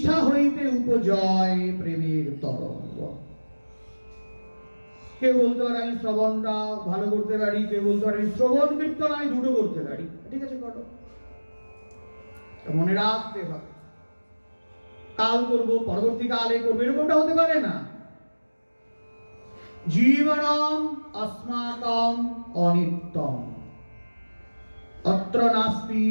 হইতে উপজয় প্রেমের তরঙ্গ। কেউ বলতে পারে আমি শ্রবণটা ভালো করতে পারি, কেউ বলতে পারে শ্রবণ কীর্তন আমি দুটো করতে পারি, ঠিক আছে করো। মনে রাখতে হবে, কাল করব, পরবর্তীকালে করবো, এরকমটা হতে পারে না। জীবনম अस्माकं অনিত্যম, অত্র নাস্তি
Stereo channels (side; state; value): both; inverted; correlation -1.00